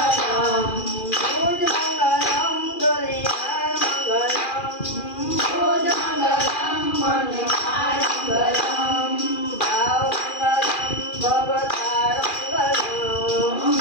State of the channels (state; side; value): late; right; 2.4 ms